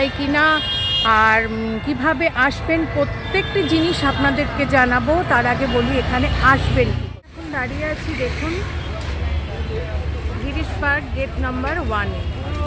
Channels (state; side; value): identical; both; correlation 1.00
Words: কি না, আর কিভাবে আসবেন, প্রত্যেকটি জিনিস আপনাদেরকে জানাবো। তার আগে বলি এখানে আসবেন। এখন দাঁড়িয়ে আছি, দেখুন, গিরিশ পার্ক গেট নাম্বার 1।